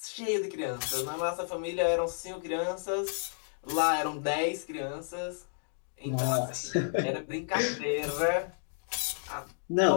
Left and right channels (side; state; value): right; silent; digital silence